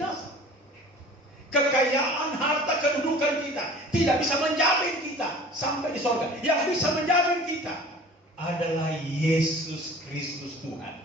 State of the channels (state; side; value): normal; both; correlation 0.44